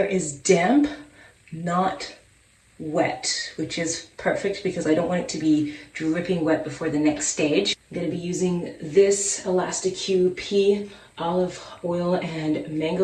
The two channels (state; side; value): identical; both; correlation 1.00